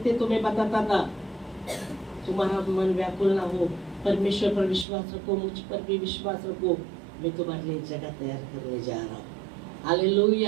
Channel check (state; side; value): drops out; left; at 4.9 s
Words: तो मैं बताता था। तुम्हारा मन व्याकुल ना हो, परमेश्वर पर विश्वास रखो, मुझ पर भी विश्वास रखो, मैं तुम्हारे लिए जगह तैयार करने जा रहा हूँ।